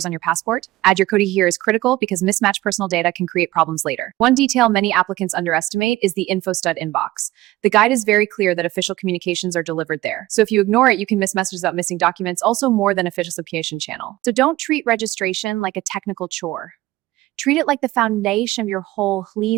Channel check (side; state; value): left; quieter; 17.4 dB